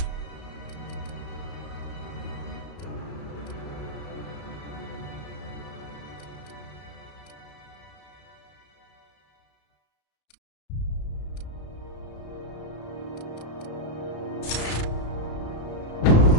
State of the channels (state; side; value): late; right; 34 ms